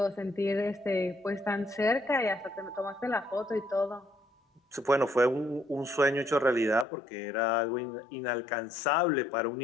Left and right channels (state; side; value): drops out; right; at 6.9 s